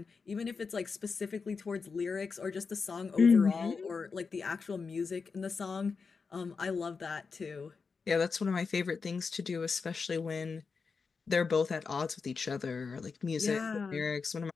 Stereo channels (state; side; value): quieter; right; 5.0 dB